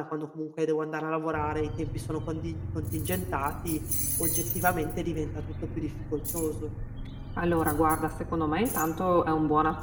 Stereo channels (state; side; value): identical; both; correlation 1.00